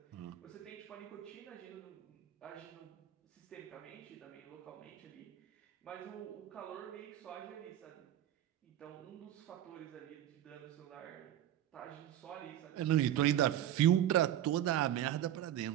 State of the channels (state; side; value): quieter; left; 12.0 dB